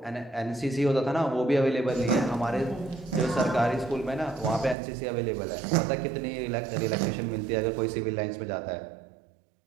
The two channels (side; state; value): left; drops out; at 4.8 s